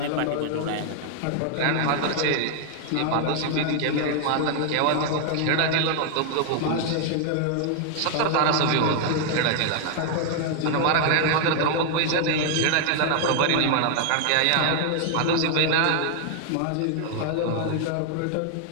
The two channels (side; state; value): both; different; correlation 0.00